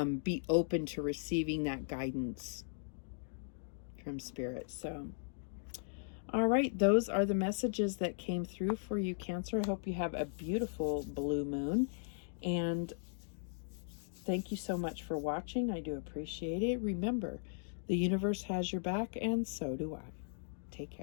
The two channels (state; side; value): silent; right; digital silence